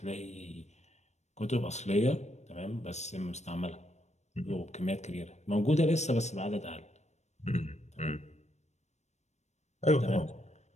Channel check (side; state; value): right; late; 0.33 ms